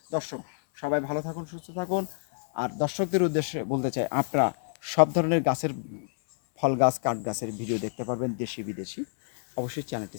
দর্শক, সবাই ভালো থাকুন, সুস্থ থাকুন। আর দর্শকদের উদ্দেশ্যে বলতে চাই, আপনারা সব ধরনের গাছের, ফল গাছ, কাঠ গাছের ভিডিও দেখতে পারবেন, দেশি বিদেশি। অবশ্যই চ্যানেলটি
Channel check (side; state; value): right; silent; 59 dB below the other